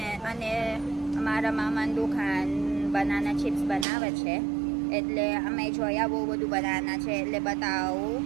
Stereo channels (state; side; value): drops out; left; at 3.9 s